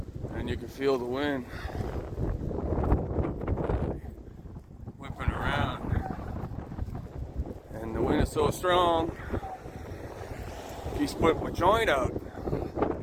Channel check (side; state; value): both; identical; correlation 1.00